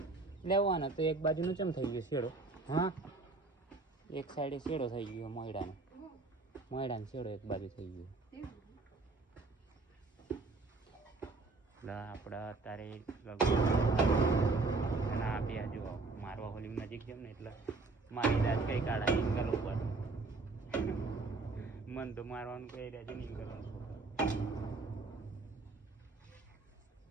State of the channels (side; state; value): left; quieter; 3.7 dB